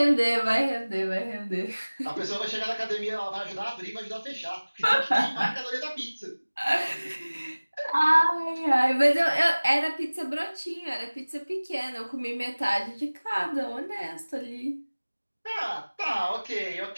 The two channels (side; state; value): both; inverted; correlation -1.00